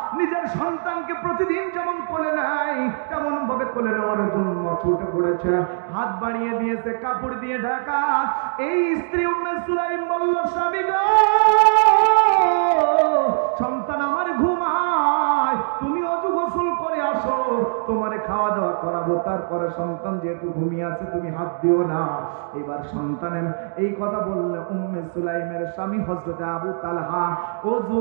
নিজের সন্তানকে প্রতিদিন যেমন কোলে নেয় তেমন ভাবে কোলে নেওয়ার জন্য ছুটে পড়েছে, হাত বাড়িয়ে দিয়েছে, কাপড় দিয়ে ঢাকা। এই স্ত্রী উম্মে সুলাইম বলল, স্বামী গো, সন্তান আমার ঘুমায়, তুমি অজু গোসল করে আসো, তোমারে খাওয়া দাওয়া করাবো, তারপরে সন্তান যেহেতু ঘুমিয়ে আছে তুমি হাত দিও না। এবার সন্তানের এই কথা বললে উম্মে সুলাইমের স্বামী হযরতে আবু তালহা অজু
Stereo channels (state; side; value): silent; left; digital silence